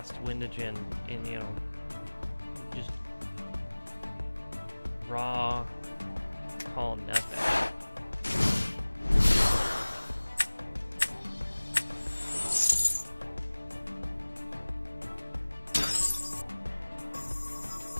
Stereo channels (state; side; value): inverted; both; correlation -1.00